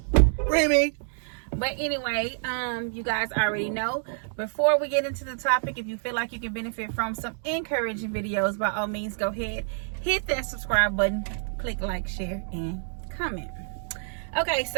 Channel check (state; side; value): silent; left; digital silence